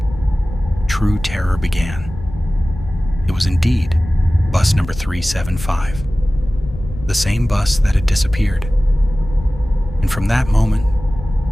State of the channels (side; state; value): left; noise; rumble, 12 dB below the sound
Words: true terror began. It was indeed bus number 375, the same bus that had disappeared. And from that moment,